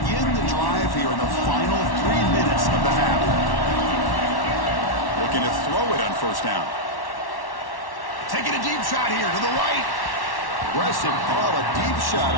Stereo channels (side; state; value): right; late; 1.1 ms